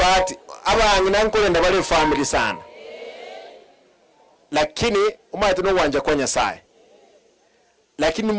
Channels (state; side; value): identical; both; correlation 1.00